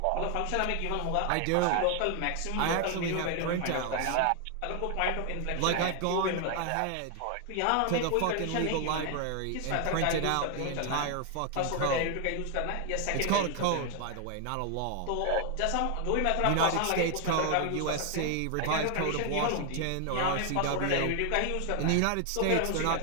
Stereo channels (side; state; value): both; different; correlation 0.00